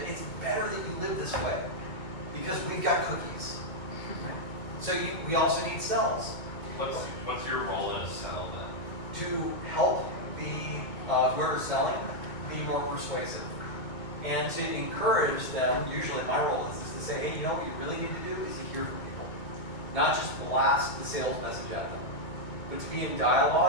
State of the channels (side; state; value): right; late; 2.2 ms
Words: it's better that you live this way. Because we've got cookies. So we also need cells. What's your role in a cell then? To help the whoever's selling be more persuasive. And to encourage them, usually my role is to say, hey, you know what you really need to do is to hear from people. Not just blast the sales message at them, but to be in